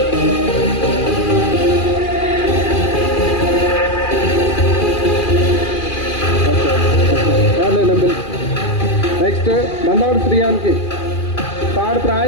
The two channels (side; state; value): right; late; 2.4 ms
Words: నెక్స్ట్ మందాడు శ్రీయాన్కి థర్డ్